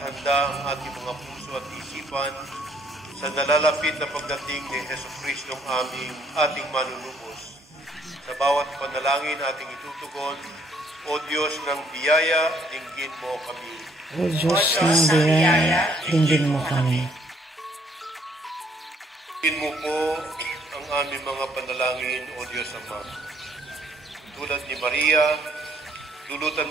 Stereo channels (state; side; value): normal; both; correlation 0.66